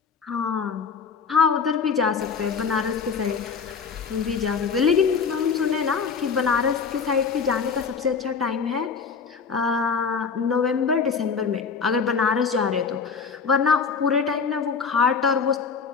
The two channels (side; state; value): right; quieter; 5.7 dB